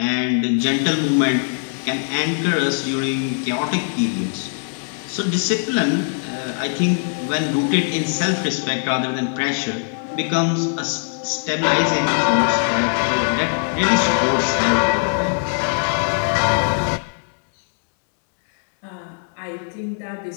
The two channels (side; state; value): right; silent; digital silence